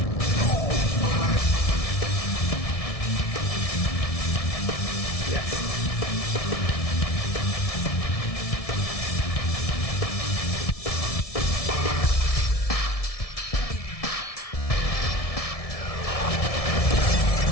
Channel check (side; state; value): right; late; 1.7 ms